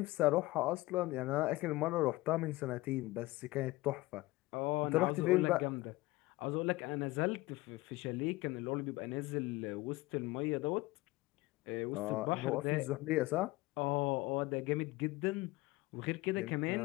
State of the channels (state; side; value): quieter; right; 20.1 dB